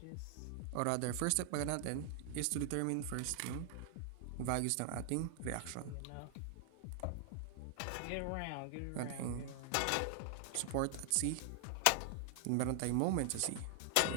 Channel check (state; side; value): different; both; correlation 0.00